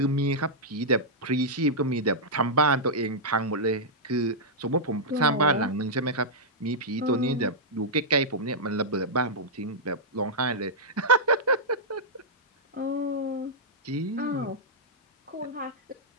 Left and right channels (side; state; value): both; normal; correlation -0.10